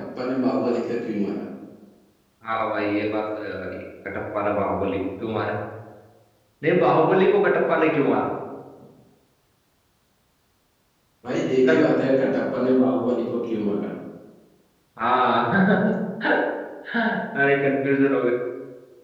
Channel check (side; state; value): both; identical; correlation 1.00